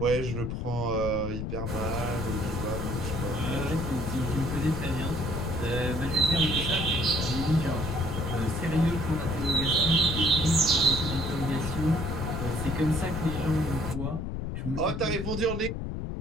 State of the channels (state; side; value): noise; left; rumble, 4 dB below the sound